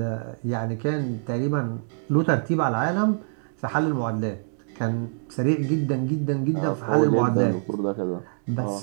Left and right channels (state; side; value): silent; left; digital silence